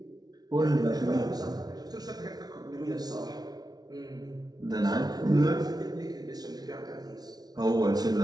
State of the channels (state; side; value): late; left; 0.19 ms